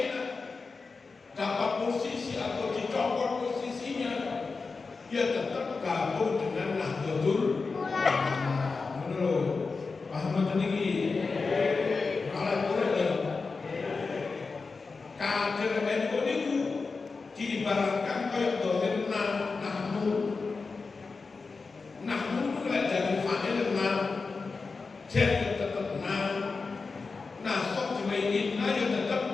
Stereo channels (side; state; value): right; quieter; 4.4 dB